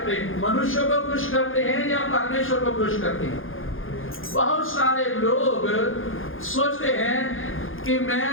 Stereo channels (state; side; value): late; right; 0.59 ms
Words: हैं, मनुष्यों को खुश करते हैं या परमेश्वर को खुश करते हैं? बहुत सारे लोग सोचते हैं कि मैं